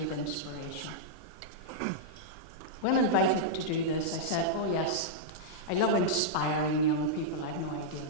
with inspiration. When invited to do this, I said, oh yes, I love inspiring young people. I have no idea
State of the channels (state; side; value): normal; both; correlation -0.05